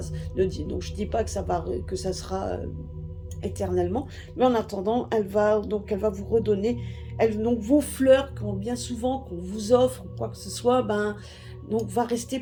Donc je dis pas que ça sera éternellement, mais en attendant, elle va vous redonner, donc vos fleurs, quand bien souvent qu'on vous offre quoi que ce soit, donc va rester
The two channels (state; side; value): identical; both; correlation 1.00